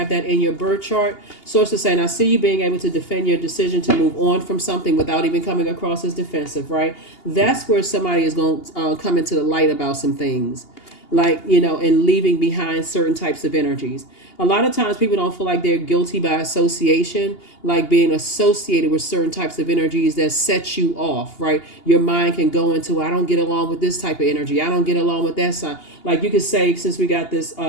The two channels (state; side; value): late; right; 2.8 ms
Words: that in your birth chart. Source is saying, I see you being able to defend your decision to move on from something without even coming across as defensive, right? That's where somebody is going to come into the light about some things, like, and leaving behind certain types of energies. A lot of times people don't feel like they're guilty by association, like being associated with certain types of energies that set you off, right? Your mind can go into, I don't get along with this type of energy. I don't get along with that sign. Like you could say, since we got this,